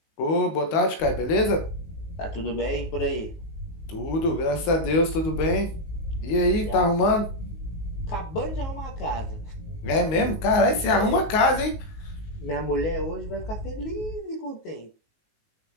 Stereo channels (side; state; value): right; late; 19 ms